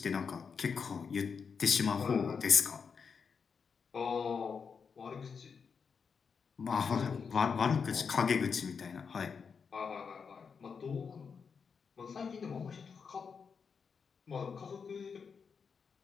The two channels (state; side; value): quieter; right; 5.9 dB